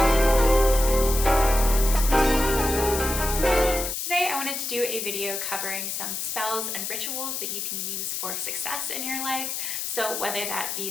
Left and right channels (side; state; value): left; noise; hiss, 3 dB below the sound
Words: Today I wanted to do a video covering some spells and rituals that you can use for success in your life. So whether that be